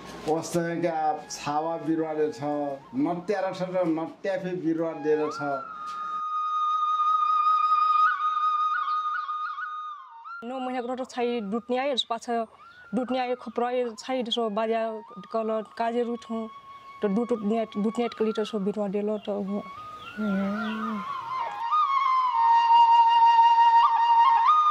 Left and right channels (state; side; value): identical; both; correlation 1.00